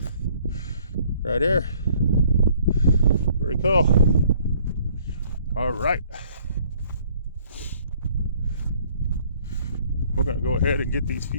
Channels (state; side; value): inverted; both; correlation -0.60